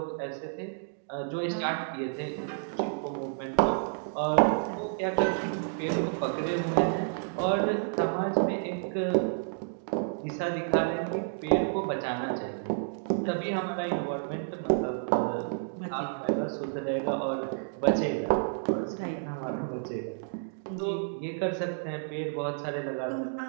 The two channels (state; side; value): silent; left; digital silence